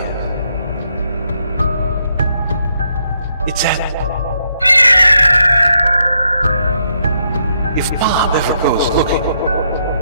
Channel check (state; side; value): inverted; both; correlation -0.76